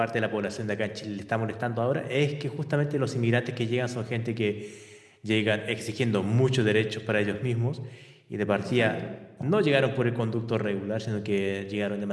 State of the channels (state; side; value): identical; both; correlation 1.00